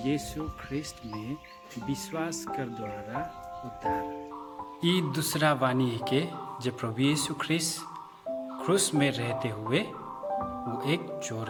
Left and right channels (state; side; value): identical; both; correlation 1.00